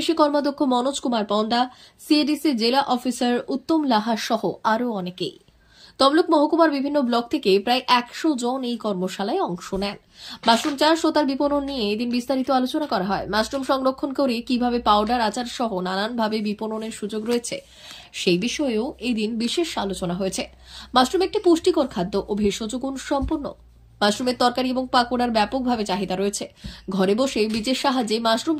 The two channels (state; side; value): identical; both; correlation 1.00